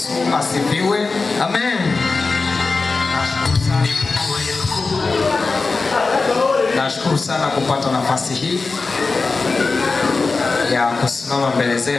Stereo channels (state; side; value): quieter; right; 4.0 dB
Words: asifiwe. Amen. Nashukuru sana kupata nafasi hii ya kusimama mbele